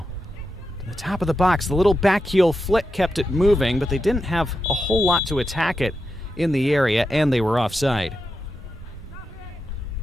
To the top of the box, the little back heel flick kept it moving, but they didn't have a whole lot to attack it in the area, and they were offside.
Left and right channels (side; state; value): both; normal; correlation 0.88